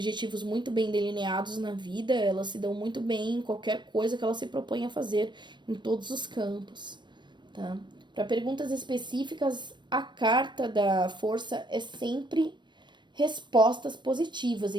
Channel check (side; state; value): left; late; 0.22 ms